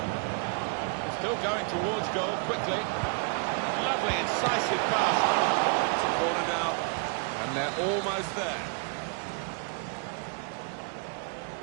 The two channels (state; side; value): quieter; left; 39.4 dB